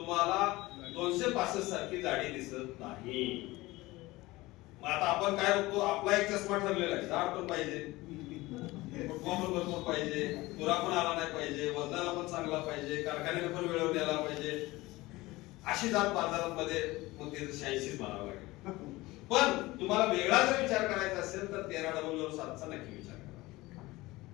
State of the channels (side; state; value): right; quieter; 20.0 dB